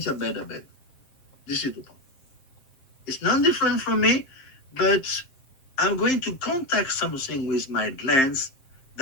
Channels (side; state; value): right; late; 7.6 ms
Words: Beda Beda. This is the point. It's not different from me, but I'm going to contact something with my glance